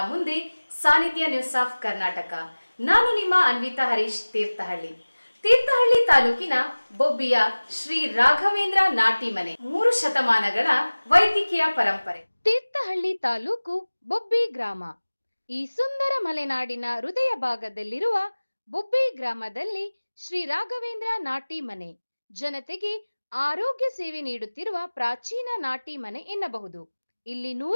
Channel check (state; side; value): inverted; both; correlation -1.00